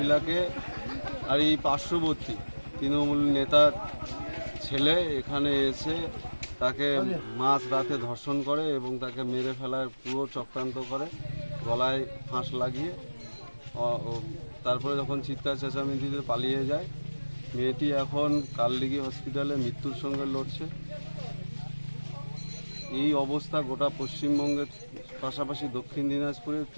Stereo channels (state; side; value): inverted; both; correlation -1.00